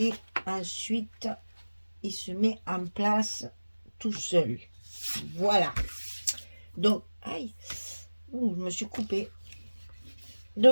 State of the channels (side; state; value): both; inverted; correlation -1.00